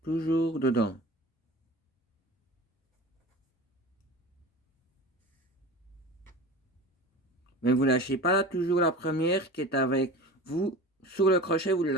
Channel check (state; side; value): normal; both; correlation 0.35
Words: Toujours dedans. Mais vous lâchez pas là, toujours la première qui est avec vous. Sur le crochet, vous ne le